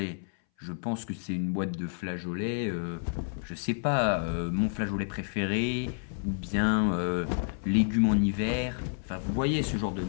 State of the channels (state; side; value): silent; right; 58 dB below the other